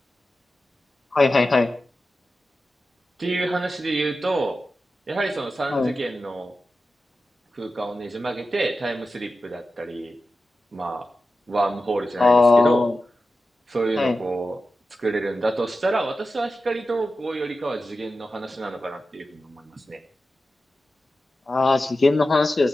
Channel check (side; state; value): both; normal; correlation 0.93